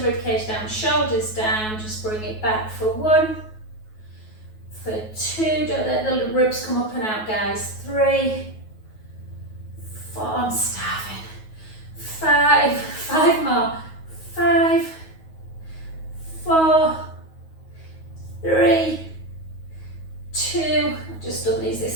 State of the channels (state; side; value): late; right; 9.3 ms